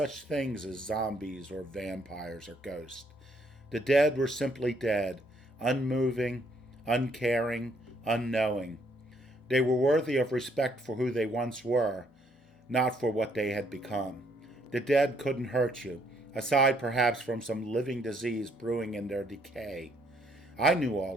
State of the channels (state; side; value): normal; both; correlation 0.69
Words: things as zombies or vampires or ghosts. The dead were simply dead, unmoving, uncaring, unknowing. They were worthy of respect for who they once were, not for what they had become. The dead couldn't hurt you, aside perhaps from some living disease brewing in their decay. I knew